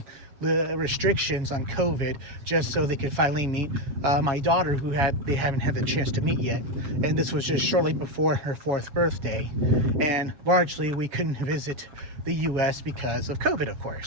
restrictions on COVID, just so they could finally meet my daughter, who they haven't had the chance to meet yet. And this was just shortly before her 4th birthday. And largely we couldn't visit the U.S. because of COVID, of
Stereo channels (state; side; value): late; left; 7.2 ms